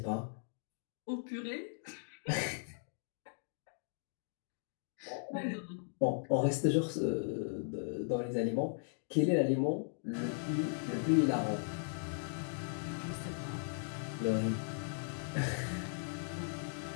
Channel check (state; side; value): silent; right; digital silence